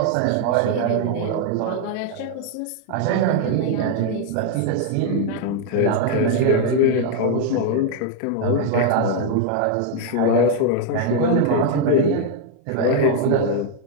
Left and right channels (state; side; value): different; both; correlation 0.00